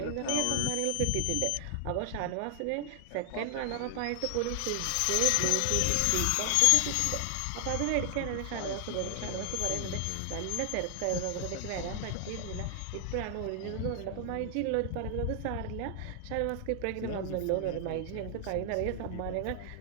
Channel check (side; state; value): both; different; correlation 0.00